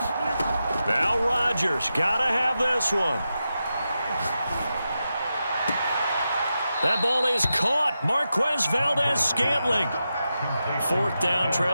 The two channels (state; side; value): inverted; both; correlation -0.89